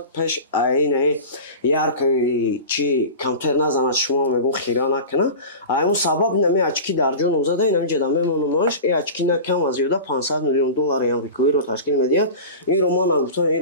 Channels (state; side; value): inverted; both; correlation -0.32